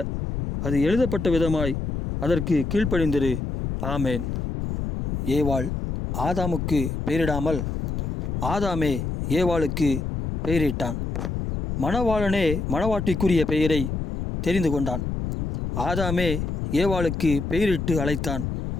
அது எழுதப்பட்ட விதமாய் அதற்கு கீழ்ப்படிந்திரு. ஆமேன். ஏவாள் ஆதாமுக்கு பெயரிடாமல் ஆதாமே ஏவாளுக்கு பெயரிட்டான். மணவாளனே மணவாட்டிக்குரிய பெயரை தெரிந்து கொண்டான். ஆதாமே ஏவாளுக்கு பெயரிட்டு அழைத்தான்.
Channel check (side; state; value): left; noise; rumble, 3 dB below the sound